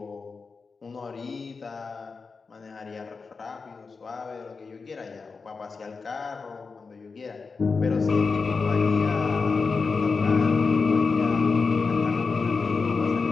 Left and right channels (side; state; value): right; quieter; 4.7 dB